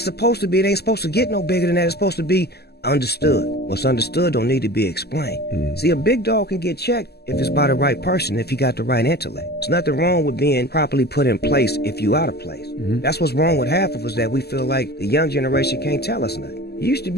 supposed to be. It ain't supposed to get no bigger than that. It's supposed to be understood. What's understood don't need to be explained. See, a big dog can get checked if it's by the right person, if you got the right intellect. There's nothing wrong with being properly put in place if you out of place. That's what's wrong with half of us, that we feel like the young generation can't tell us nothing. You used to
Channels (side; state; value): right; late; 0.47 ms